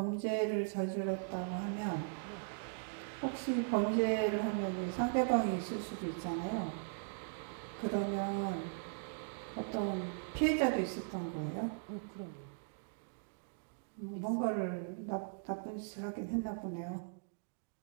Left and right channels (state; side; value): silent; left; digital silence